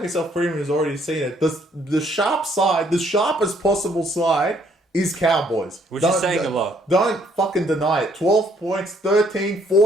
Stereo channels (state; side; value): normal; both; correlation 0.66